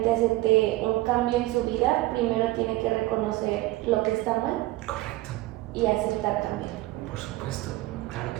acepte un cambio en su vida, primero tiene que reconocer lo que está mal. Correcto. Y aceptar cambiar. Por supuesto, claro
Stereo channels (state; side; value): quieter; left; 18.5 dB